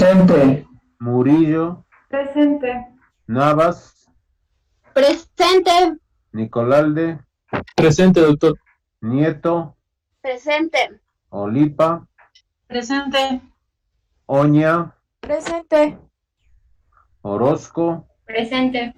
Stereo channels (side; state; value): both; identical; correlation 1.00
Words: Murillo, Presente. Navas, Presente. Nicolalde, Presente, doctor. Nieto, Presente. Olipa, Presente. Oña, Presente. Orozco, Presente.